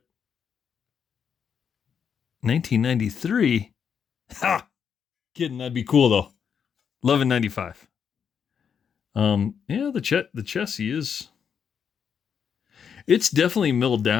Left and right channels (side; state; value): right; quieter; 7.3 dB